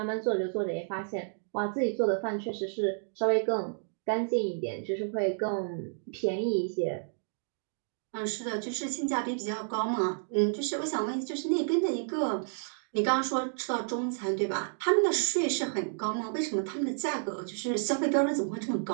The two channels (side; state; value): left; silent; digital silence